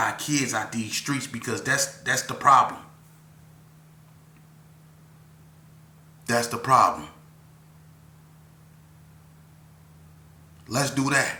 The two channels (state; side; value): identical; both; correlation 1.00